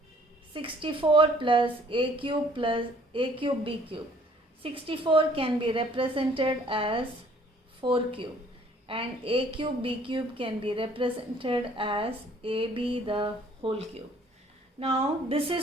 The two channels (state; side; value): normal; both; correlation 0.58